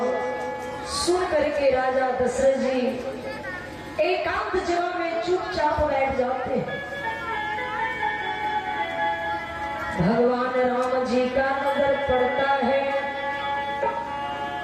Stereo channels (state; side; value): identical; both; correlation 1.00